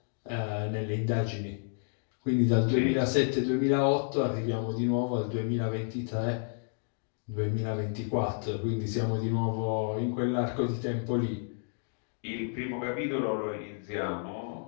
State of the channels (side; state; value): right; silent; digital silence